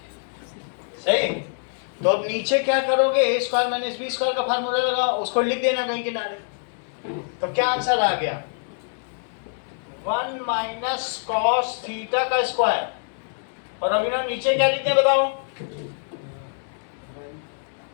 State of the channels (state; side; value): silent; right; 62 dB below the other